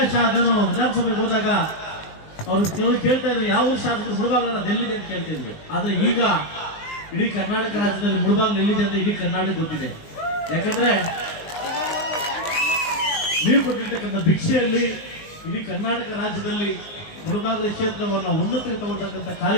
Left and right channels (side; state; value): right; late; 19 ms